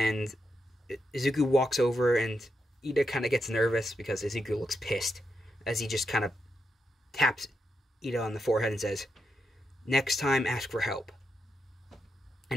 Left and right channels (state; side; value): normal; both; correlation 0.84